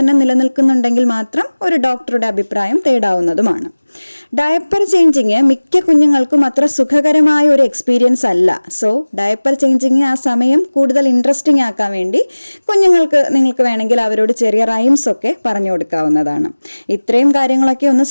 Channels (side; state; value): both; inverted; correlation -1.00